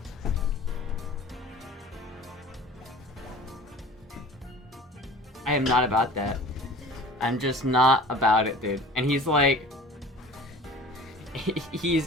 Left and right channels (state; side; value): normal; both; correlation 0.43